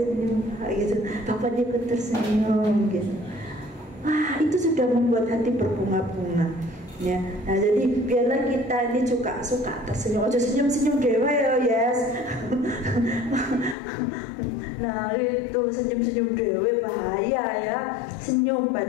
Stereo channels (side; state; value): right; drops out; at 13.8 s